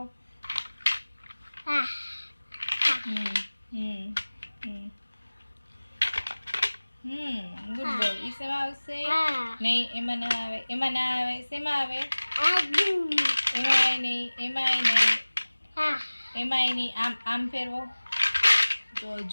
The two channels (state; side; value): inverted; both; correlation -1.00